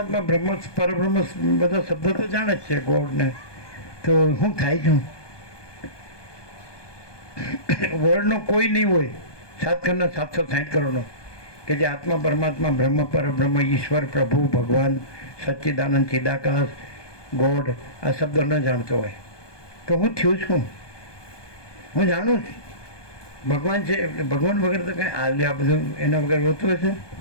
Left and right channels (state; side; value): late; right; 1.2 ms